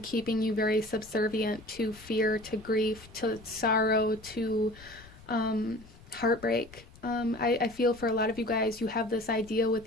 keeping you very subservient to fear, to grief, to sorrow, to heartbreak. I feel for a lot of you guys, you have this idea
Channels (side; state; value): left; noise; rumble, 21 dB below the sound